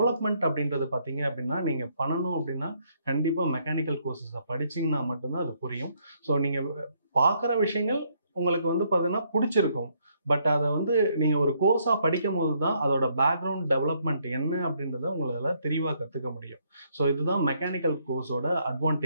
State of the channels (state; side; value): inverted; both; correlation -0.71